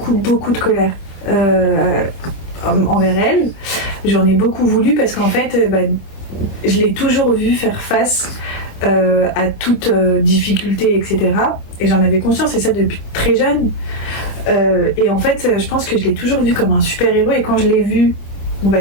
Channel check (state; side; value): late; right; 26 ms